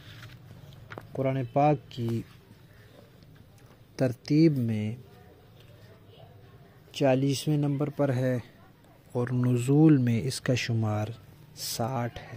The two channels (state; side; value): identical; both; correlation 1.00